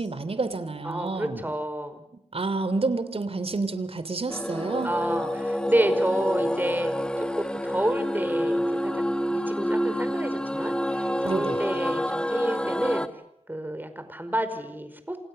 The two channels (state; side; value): normal; both; correlation 0.90